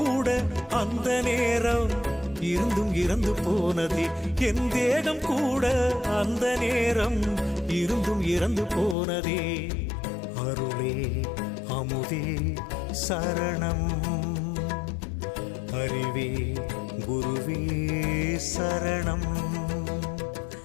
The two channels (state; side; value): drops out; right; at 9.0 s